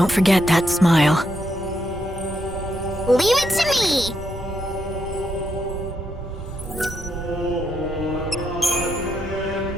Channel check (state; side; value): normal; both; correlation 0.79